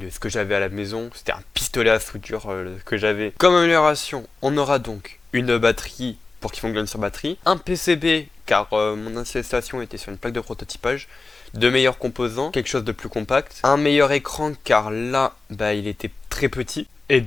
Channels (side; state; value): right; quieter; 3.7 dB